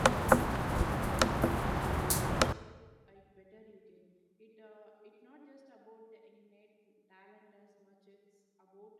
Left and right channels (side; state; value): both; identical; correlation 1.00